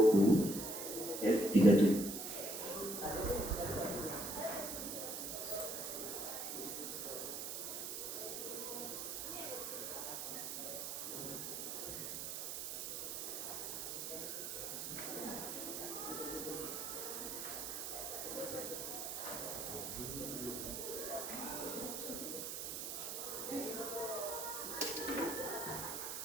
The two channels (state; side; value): noise; right; hiss, 4 dB below the sound